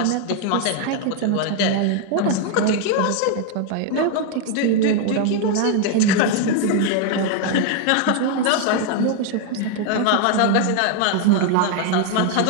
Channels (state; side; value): different; both; correlation 0.01